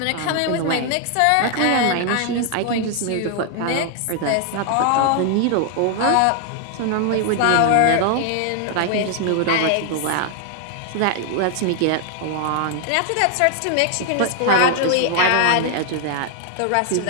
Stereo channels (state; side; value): different; both; correlation 0.00